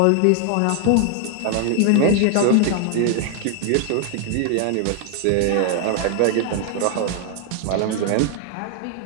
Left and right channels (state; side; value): different; both; correlation 0.00